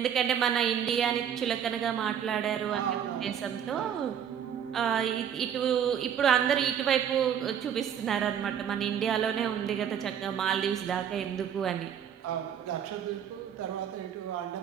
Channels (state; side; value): quieter; left; 8.7 dB